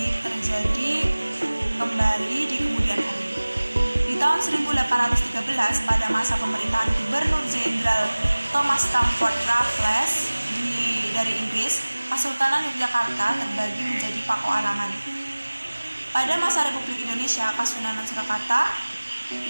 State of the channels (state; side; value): inverted; both; correlation -1.00